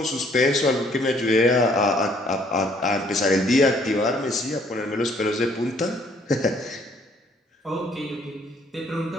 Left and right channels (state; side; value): normal; both; correlation 0.63